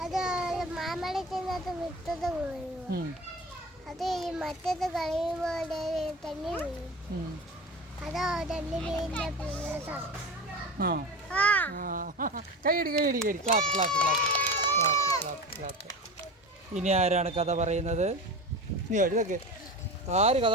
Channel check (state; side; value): normal; both; correlation 0.31